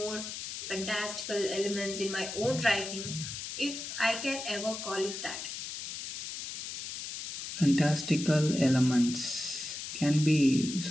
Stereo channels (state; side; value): noise; left; hiss, 7 dB below the sound